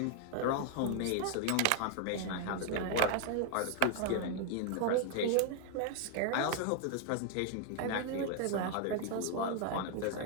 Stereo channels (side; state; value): both; different; correlation 0.00